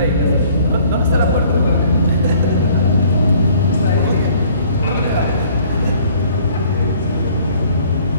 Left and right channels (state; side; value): inverted; both; correlation -0.57